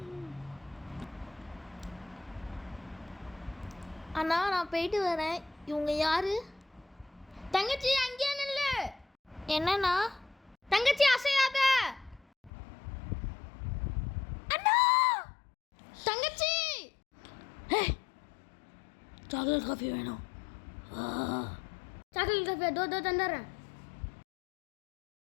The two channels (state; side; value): drops out; right; at 12.5 s